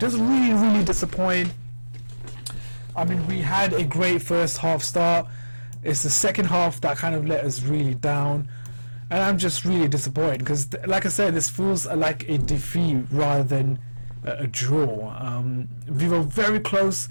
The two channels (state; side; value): inverted; both; correlation -1.00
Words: really disappointed. I mean, we had a great first half start. It's the second half that kind of let us really down, and I'm just really disappointed because, like I said, this feels like a defeat rather than a draw. We were very close.